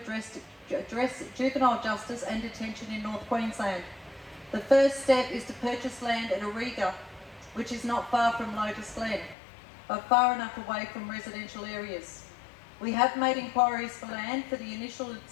juvenile justice and detention in North Queensland. The first step is to purchase land at Auriga, which is not far from Lotus Glen, but far enough away from residential areas. We have made inquiries for land for the initial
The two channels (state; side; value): drops out; right; at 9.3 s